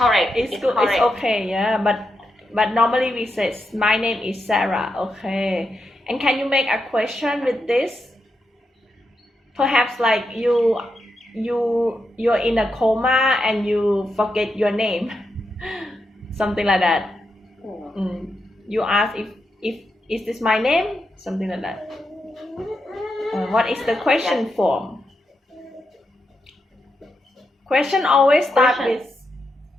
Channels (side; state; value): both; normal; correlation 0.85